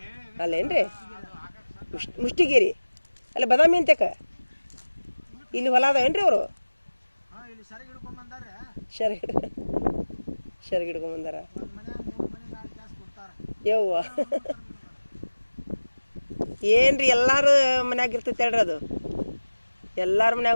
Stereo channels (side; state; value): both; inverted; correlation -1.00